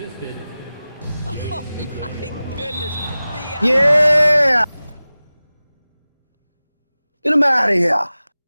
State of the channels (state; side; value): inverted; both; correlation -0.97